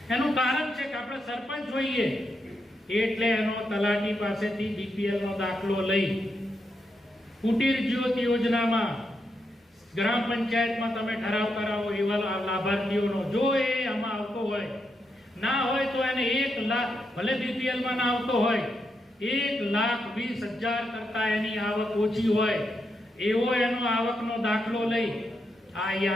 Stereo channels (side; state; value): both; normal; correlation 0.82